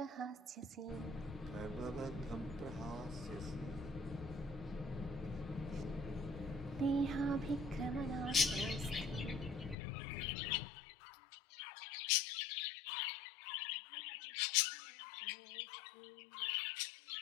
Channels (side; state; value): right; drops out; at 9.8 s